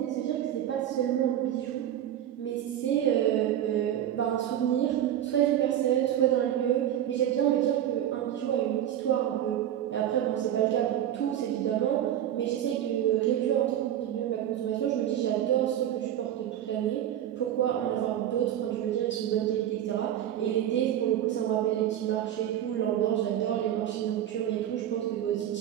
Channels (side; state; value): left; quieter; 11.2 dB